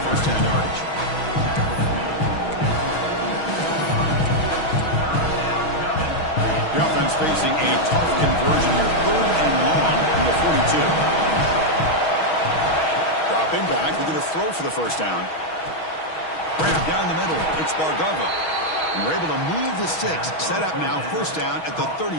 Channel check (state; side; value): late; right; 6.3 ms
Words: first down yardage. The offense facing a tough conversion here. Third and long from the 42. Dropping back. We're going to throw for the first down. Grab down the middle. It's Bargava. And we're able to move the sticks. Set up now. First down at the